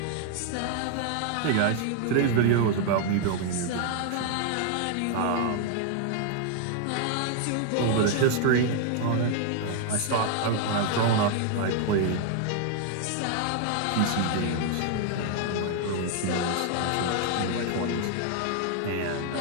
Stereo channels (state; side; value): different; both; correlation 0.00